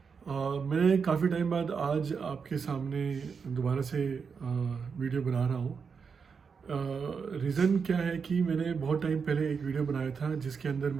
मैं काफ़ी टाइम बाद आज आपके सामने दोबारा से वीडियो बना रहा हूँ। रीज़न क्या है कि मैंने बहुत टाइम पहले एक वीडियो बनाया था जिसके अंदर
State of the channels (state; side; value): quieter; left; 5.8 dB